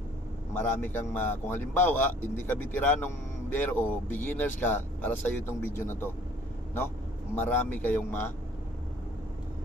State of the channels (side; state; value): both; normal; correlation 0.56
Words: Marami kang kung halimbawa hindi ka veteranong biyahero o beginners ka, para sa iyo itong video na to, no? Marami kayong